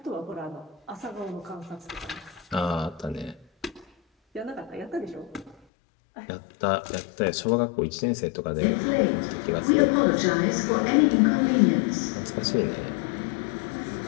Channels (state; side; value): drops out; right; at 5.6 s